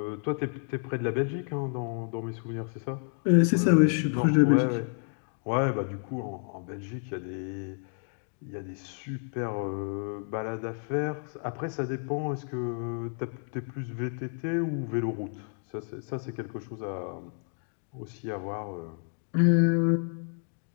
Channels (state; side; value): silent; right; 58 dB below the other